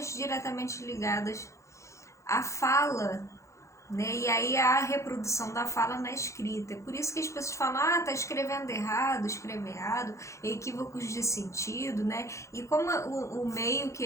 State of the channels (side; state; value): right; late; 0.14 ms